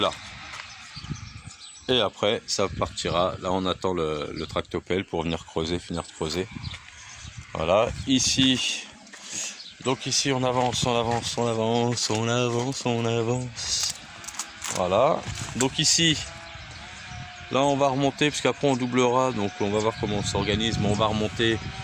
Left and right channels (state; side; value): identical; both; correlation 1.00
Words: Et après ça partira. Là on attend le tractopelle pour venir creuser, finir de creuser. Voilà. Ici. Donc ici on avance. Voilà, donc ici, là on va remonter, parce qu'après on doublera, donc on va voir comment on s'organise, mais on va remonter,